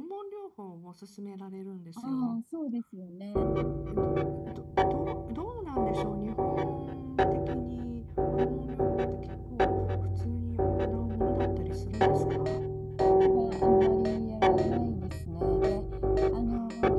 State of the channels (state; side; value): identical; both; correlation 1.00